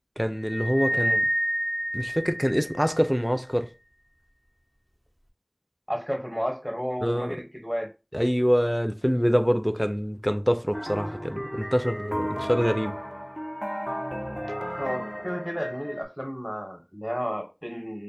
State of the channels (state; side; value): identical; both; correlation 1.00